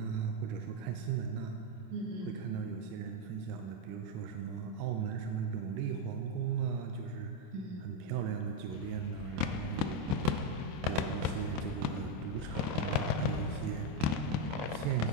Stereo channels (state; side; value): late; left; 26 ms